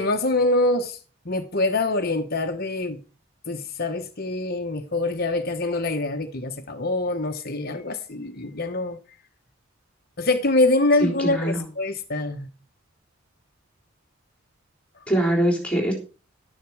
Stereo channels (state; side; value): normal; both; correlation 0.16